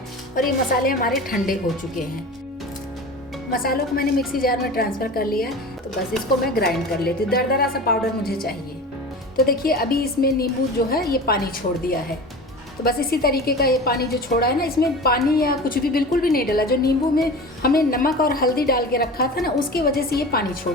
और ये मसाले हमारे ठंडे हो चुके हैं। मसालों को मैंने मिक्सी जार में ट्रांसफ़र कर लिया है। तो बस इसको मैं ग्राइंड कर लेती हूँ। दरदरा सा पाउडर मुझे चाहिए। तो देखिए, अभी इसमें नींबू जो है ये पानी छोड़ दिया है। तो बस इसी तरीके का ये पानी जो छोड़ा है ना, इसमें पानी या कुछ भी बिल्कुल भी नहीं डाला। जो नींबू में हमने नमक और हल्दी डाल के रखा था ना, उसकी वजह से ये पानी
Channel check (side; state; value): both; normal; correlation 0.33